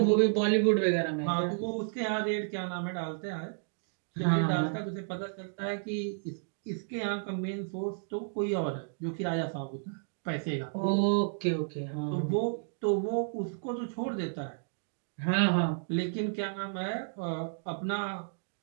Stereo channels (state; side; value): silent; left; digital silence